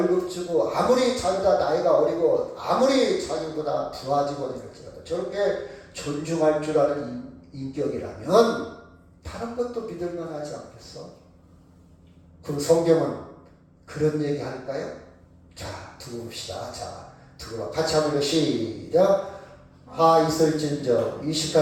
주고 아무리 자기가 나이가 어리고 아무리 자기보다 부하직원이 될지라도 저렇게 존중할 줄 아는 인격이라면 다른 것도 믿을만 하지 않겠어? 그럼 성경은 그런 얘기 할까요? 자, 두고 봅시다. 두고 같이 한번 시작. 화 있을진저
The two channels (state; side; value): identical; both; correlation 1.00